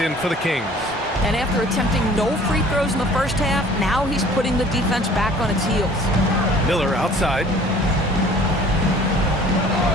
in for the Kings. And after attempting no free throws in the first half, now he's putting the defense back on its heels. Miller outside.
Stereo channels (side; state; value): both; normal; correlation 0.51